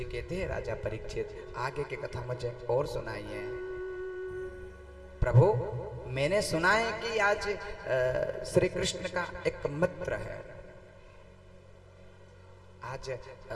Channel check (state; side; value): identical; both; correlation 1.00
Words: कहते हैं राजा परीक्षित आगे की कथा मुझे और सुनाइए। प्रभु मैंने सुना है कि आज श्री कृष्ण का एक मित्र है। आज